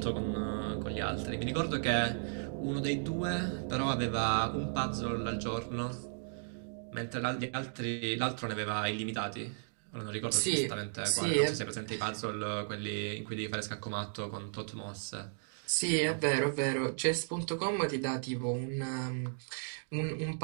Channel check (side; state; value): left; silent; digital silence